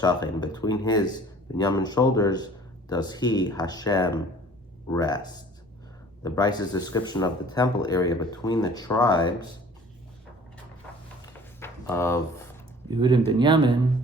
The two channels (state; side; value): normal; both; correlation 0.50